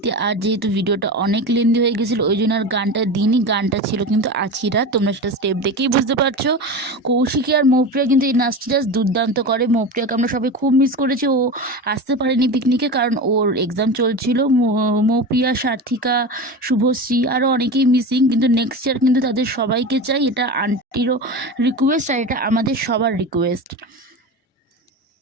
আর যেহেতু ভিডিওটা অনেক লেন্দি হয়ে গেছিলো ওই জন্য আর গানটা দিনই। গানটা ছিল কিন্তু আছিরা, তোমরা সেটা স্টেপ দেখেই বুঝতে পারছো। কৌশিকী আর মৌপ্রিয়া কিন্তু এই নাচটা জাস্ট দুর্দান্ত করে। মৌপ্রিয়াকে আমরা সবাই খুব মিস করেছি, ও আসতে পারেনি পিকনিকে কারণ ওর এক্সাম চলছিল। মৌপ্রিয়া, সার্থিকা, শুভশ্রী আরও অনেকেই মিসিং, কিন্তু নেক্সট ইয়ার কিন্তু তাদের সবাইকে চাই। এটা আন্টিরও রিকোয়েস্ট আর এটা আমাদের সবার রিকোয়েস্ট।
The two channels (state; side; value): normal; both; correlation 0.26